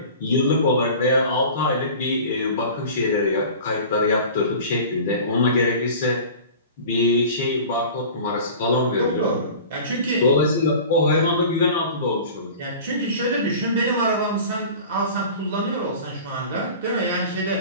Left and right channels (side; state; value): both; inverted; correlation -0.39